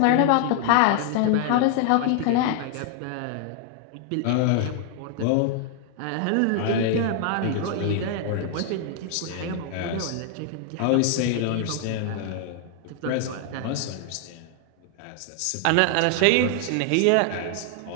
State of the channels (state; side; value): different; both; correlation 0.00